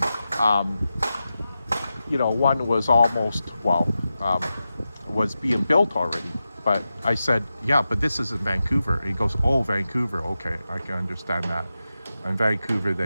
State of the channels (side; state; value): both; inverted; correlation -0.92